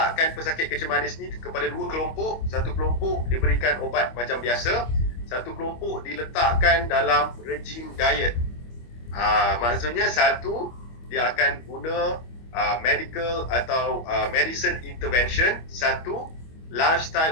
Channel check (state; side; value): late; right; 25 ms